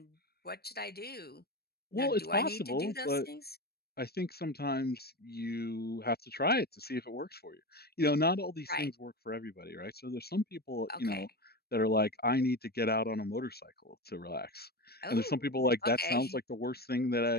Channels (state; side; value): late; right; 0.46 ms